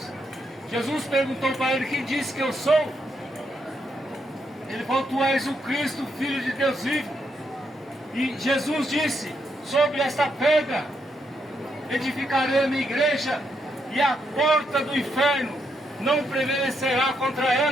Jesus perguntou para ele, quem disse que eu sou? Ele falou, tu és o Cristo, Filho de Deus vivo. E Jesus disse, sobre esta pedra edificarei a minha igreja, e a porta do inferno não prevalecerá contra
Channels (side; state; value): both; normal; correlation 0.79